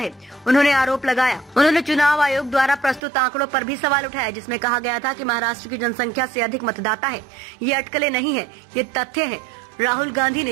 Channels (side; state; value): left; drops out; at 3.0 s